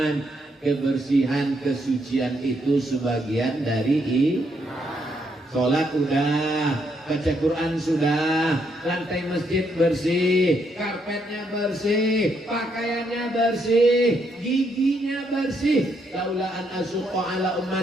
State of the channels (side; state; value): both; normal; correlation 0.75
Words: Kebersihan, kesucian itu sebagian dari sholat udah, baca Quran sudah, lantai masjid bersih, karpetnya bersih, pakaiannya bersih, giginya bersih. Laula an asuqa ala